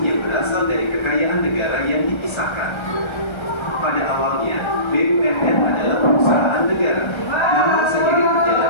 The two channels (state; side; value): late; right; 1.3 ms